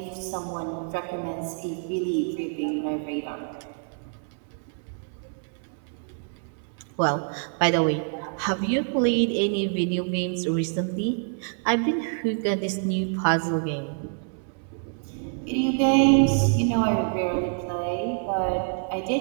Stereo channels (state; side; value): silent; left; 55 dB below the other